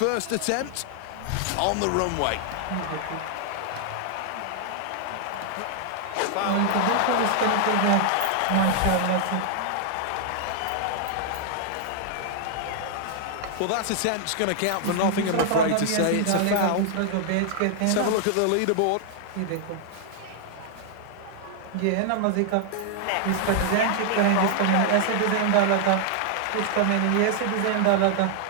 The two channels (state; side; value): different; both; correlation 0.00